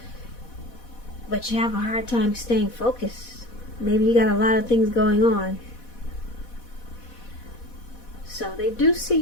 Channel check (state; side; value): late; right; 4.1 ms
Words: but you have a hard time staying focused. Maybe you got a lot of things going on. So they do see